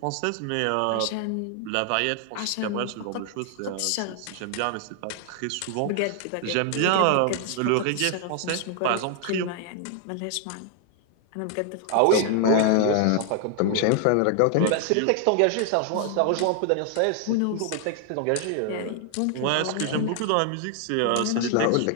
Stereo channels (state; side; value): different; both; correlation 0.00